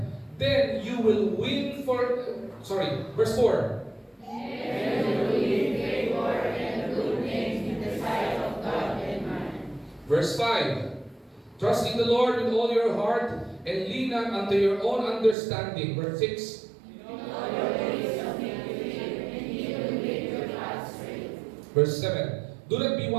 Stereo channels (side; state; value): left; drops out; at 15.4 s